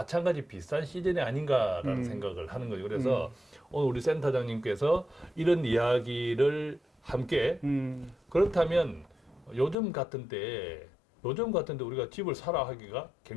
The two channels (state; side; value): drops out; right; at 9.8 s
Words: 비슷한 시즌이 아닌가라는 생각을 하는 거죠. 그래서 오늘 우리 센터장님께서 이런 이야기를 함께 그렇다면 요즘 같은 때 우리가 집을 사라 하기가